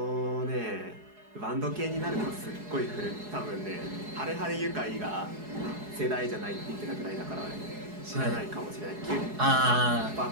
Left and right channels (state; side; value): late; left; 4.8 ms